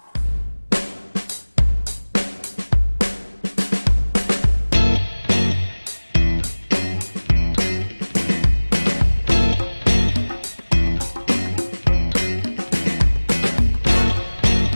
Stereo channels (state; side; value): inverted; both; correlation -1.00